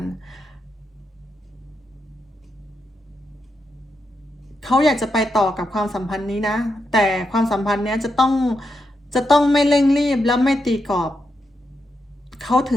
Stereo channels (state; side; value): normal; both; correlation 0.84